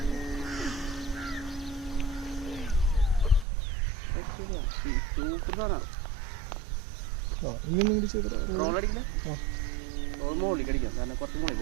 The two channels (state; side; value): drops out; left; at 3.5 s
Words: ഇങ്ങനൊന്നും കൂടി ചെയ്ത റോൾ അടിക്കില്ല. റോൾ മോളിൽ അടിക്കാം കാരണം കുറച്ച് മോളിൽ